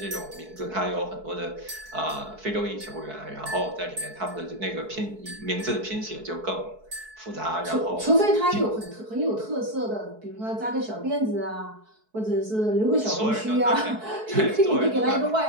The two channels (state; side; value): late; left; 4.6 ms